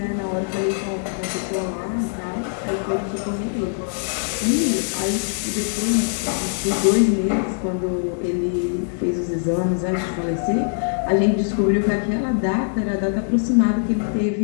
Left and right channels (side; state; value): right; silent; digital silence